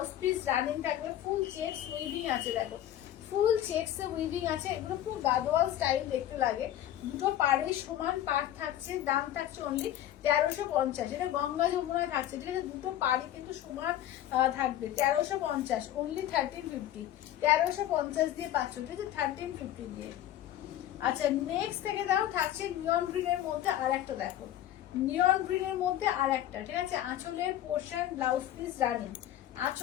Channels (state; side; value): quieter; right; 12.4 dB